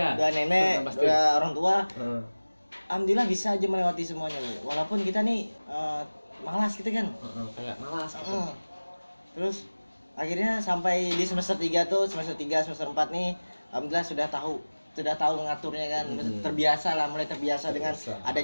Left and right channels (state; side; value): inverted; both; correlation -1.00